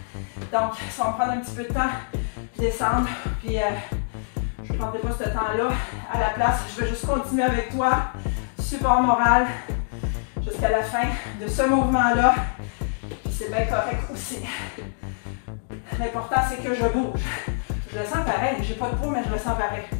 Donc, ça va me prendre un petit peu de temps de descendre. Puis, je ne prendrai pas ce temps-là à la place. Je vais juste continuer avec toi. Support moral jusqu'à la fin de ce mouvement-là. Puis, c'est bien correct aussi. L'important, c'est que je bouge. Je le sens pareil. J'ai pas de poids, mais je le sens pareil.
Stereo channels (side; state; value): right; silent; digital silence